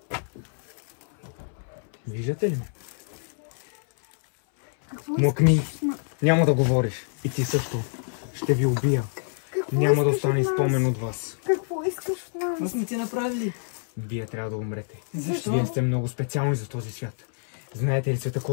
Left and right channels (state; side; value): silent; right; 61 dB below the other